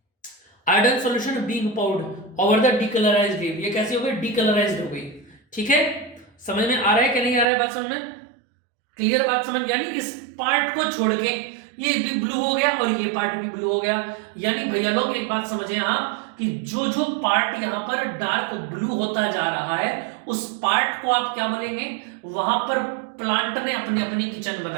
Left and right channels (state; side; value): drops out; left; at 7.5 s